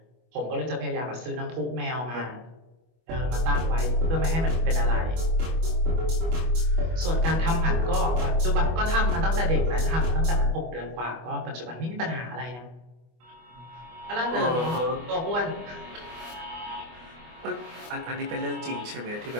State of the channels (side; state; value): left; late; 25 ms